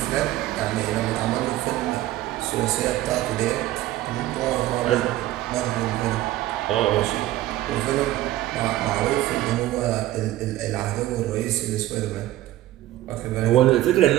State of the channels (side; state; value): left; quieter; 15.1 dB